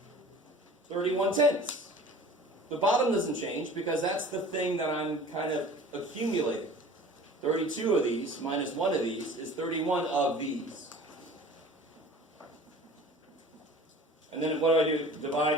31/10. The bottom doesn't change because that's the thing that I'm kind of accumulating. 32 of these minus 1 of these is 31 of these. And then what do I do?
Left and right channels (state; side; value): normal; both; correlation 0.43